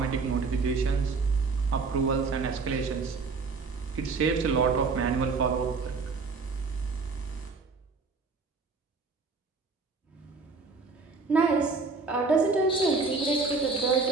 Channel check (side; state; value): left; quieter; 4.3 dB